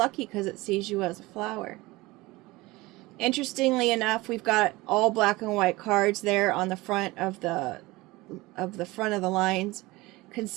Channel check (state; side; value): quieter; left; 21.0 dB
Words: because it sees you as a flower. Interestingly enough, we've got all black and white cards there on the front of the front of the lines.